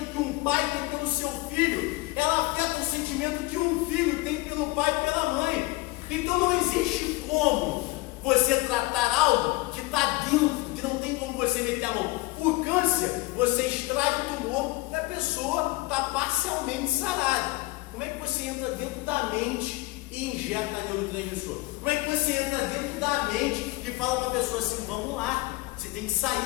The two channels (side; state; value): right; quieter; 21.0 dB